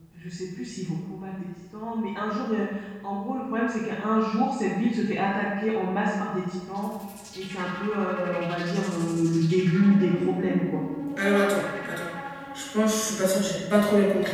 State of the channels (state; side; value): identical; both; correlation 1.00